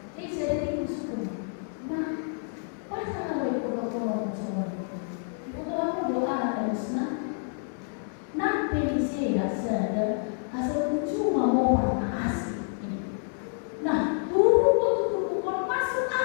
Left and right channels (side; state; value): right; silent; 59 dB below the other